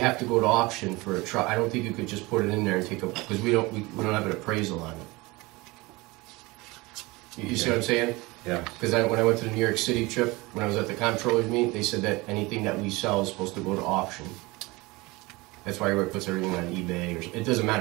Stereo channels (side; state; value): left; quieter; 22.9 dB